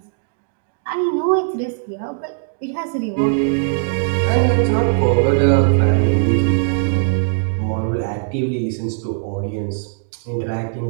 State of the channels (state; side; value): silent; left; digital silence